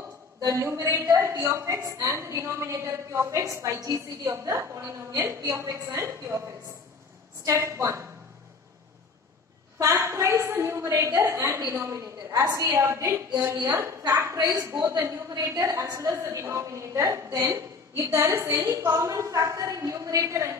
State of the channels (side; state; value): right; quieter; 4.4 dB